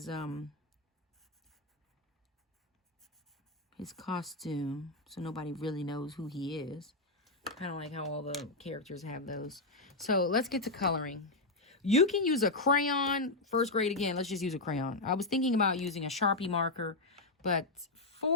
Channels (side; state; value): right; quieter; 3.0 dB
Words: costume. So nobody really knows who he is. Kind of like how all the characters have those. So let's get to coloring. You can use a crayon. First grade again. Let's just use a crayon. I was thinking about using a Sharpie marker, but